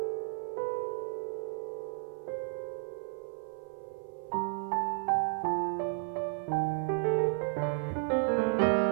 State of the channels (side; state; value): left; silent; 56 dB below the other